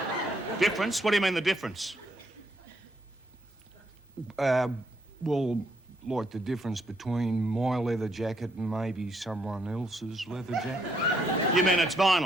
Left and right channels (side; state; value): both; normal; correlation 0.73